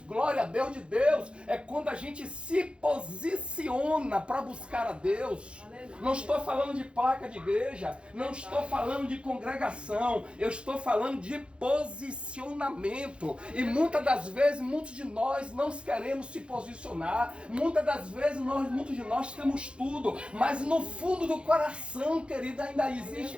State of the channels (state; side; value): late; left; 0.057 ms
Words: glória a Deus de Deus, é quando a gente se posiciona para buscar a Deus. Não estou falando de placa de igreja, não estou falando de congregação, eu estou falando de posicionamento. E muitas das vezes, muitos de nós não queremos se posicionar, muitas das vezes, muitos de nós temos tudo, mas no fundo do coração, querida, ainda existe